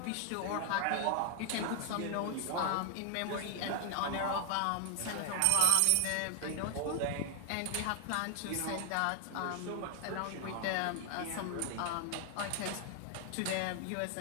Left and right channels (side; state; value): both; different; correlation 0.00